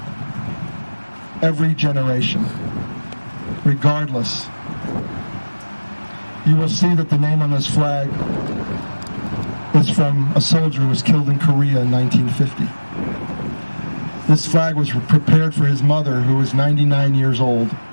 every generation, regardless. You will see that the name on this flag is from a soldier who was killed in Korea in 1950. This flag was prepared for his mother, who was 99 years old.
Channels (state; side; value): inverted; both; correlation -1.00